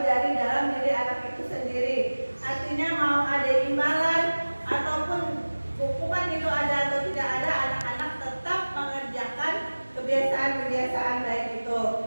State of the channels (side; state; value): both; inverted; correlation -1.00